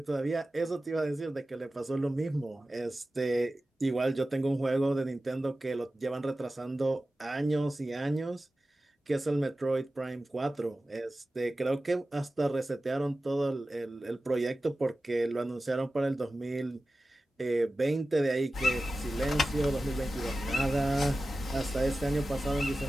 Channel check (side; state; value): both; normal; correlation 0.95